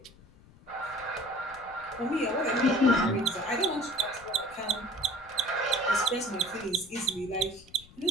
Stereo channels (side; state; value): left; noise; rumble, 24 dB below the sound